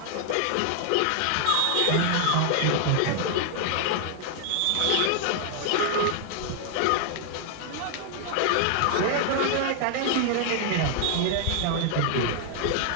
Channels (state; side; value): different; both; correlation 0.00